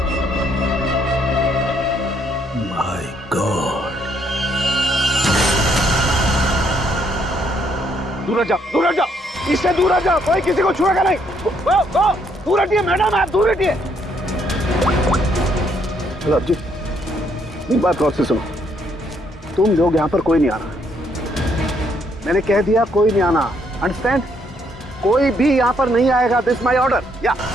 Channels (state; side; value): normal; both; correlation 0.71